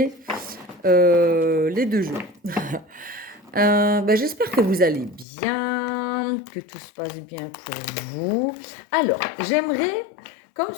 les deux jeux. J'espère que vous allez bien, que tout se passe bien pour vous. Alors, j'aimerais, comme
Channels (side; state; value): right; drops out; at 5.2 s